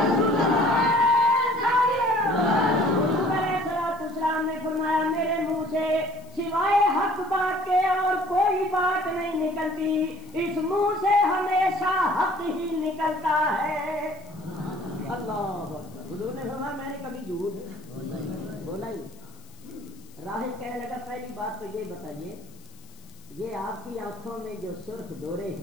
نے فرمایا میرے منہ سے سوائے حق بات کے اور کوئی بات نہیں نکلتی, اس منہ سے ہمیشہ حق ہی نکلتا ہے. اللہ حضور نے فرمایا میں نے کبھی جھوٹ بولا ہی. راہب کہنے لگا پہلی بات تو یہ بتائیے, یہ آپ کی آنکھوں میں جو سرخ ڈورے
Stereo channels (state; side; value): noise; left; hiss, 26 dB below the sound